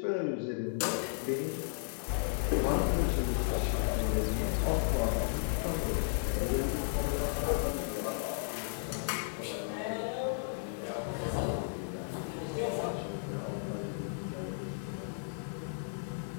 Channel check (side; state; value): right; silent; digital silence